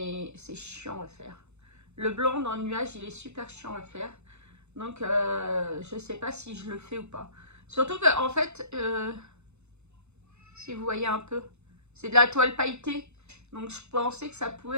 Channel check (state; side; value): late; left; 0.81 ms